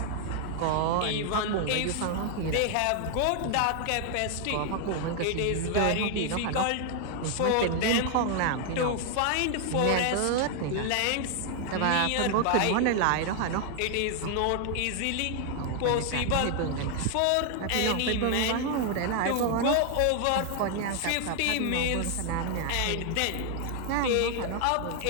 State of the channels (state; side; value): different; both; correlation 0.00